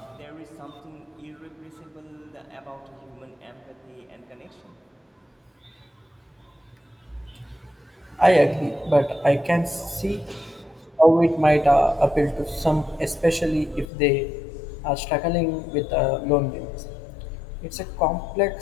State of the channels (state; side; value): drops out; right; at 13.9 s